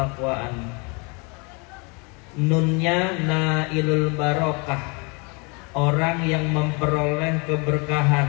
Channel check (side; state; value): right; quieter; 31.3 dB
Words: Nunnya nailul barokah, orang yang memperoleh